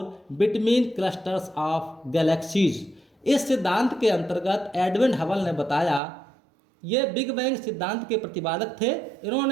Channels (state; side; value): drops out; left; at 6.0 s